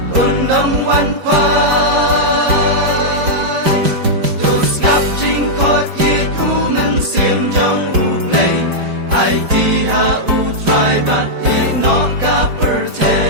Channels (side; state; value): left; late; 5.0 ms